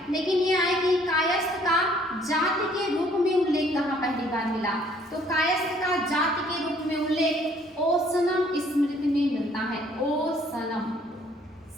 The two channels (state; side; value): normal; both; correlation 0.61